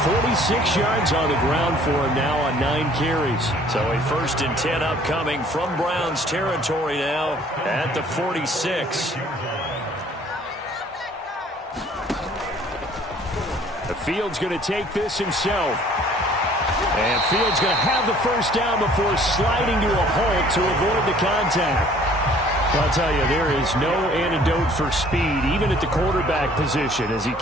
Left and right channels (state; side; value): normal; both; correlation 0.56